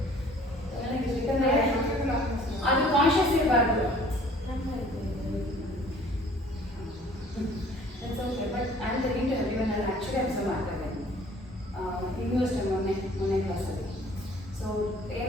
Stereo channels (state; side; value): normal; both; correlation 0.53